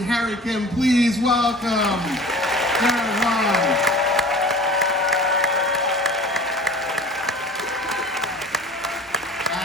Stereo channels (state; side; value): normal; both; correlation 0.41